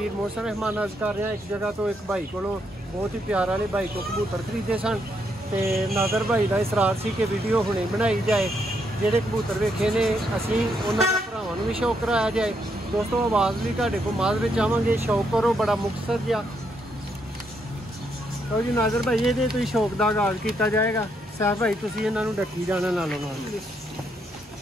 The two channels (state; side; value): normal; both; correlation 0.76